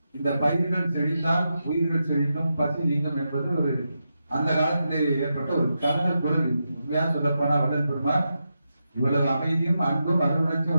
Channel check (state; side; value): inverted; both; correlation -0.87